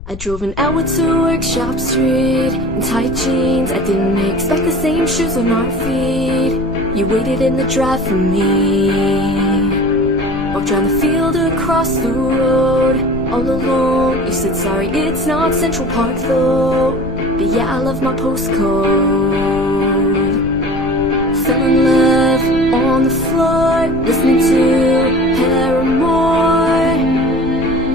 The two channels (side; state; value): left; noise; rumble, 12 dB below the sound